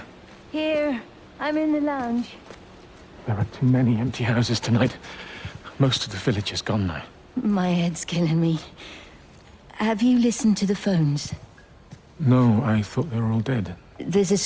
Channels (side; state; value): both; identical; correlation 1.00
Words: Here. I'm in the lounge. There are too many empty houses tonight. Most of the village is gone now. My head's killing me. Have you listened to the phones? No, I thought they were all dead. There's a